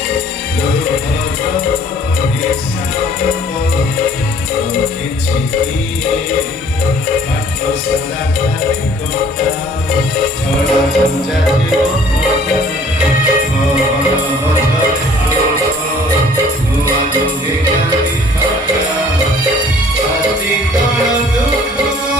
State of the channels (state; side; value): normal; both; correlation 0.55